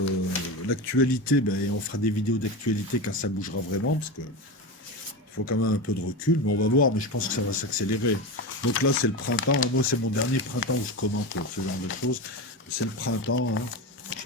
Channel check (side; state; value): both; normal; correlation 0.21